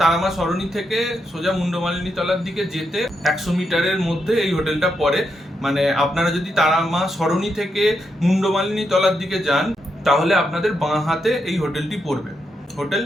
তারামা সরণি থেকে সোজা মুন্ডমালিনী তলার দিকে যেতে 100 মিটারের মধ্যে এই হোটেলটা পড়ে। মানে আপনারা যদি তারামা সরণি থেকে মুন্ডমালিনী তলার দিকে যান তাহলে আপনাদের বাঁ হাতে এই হোটেলটি পড়বে, হোটেল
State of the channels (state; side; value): normal; both; correlation 0.82